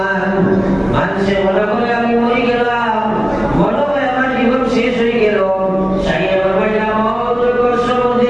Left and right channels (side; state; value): left; noise; hum, 20 dB below the sound